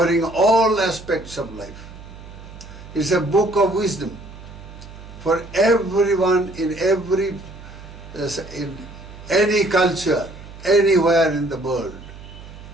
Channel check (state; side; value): noise; right; hum, 16 dB below the sound